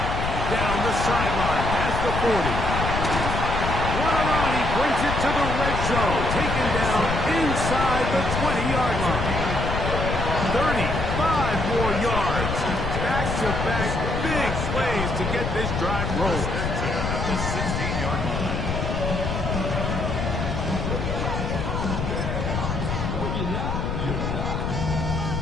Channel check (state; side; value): noise; left; rumble, 2 dB below the sound